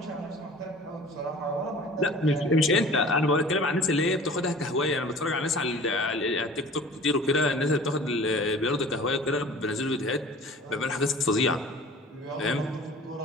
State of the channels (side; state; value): both; normal; correlation 0.43